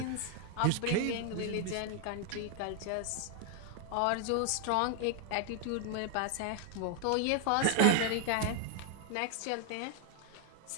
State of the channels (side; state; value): both; different; correlation 0.00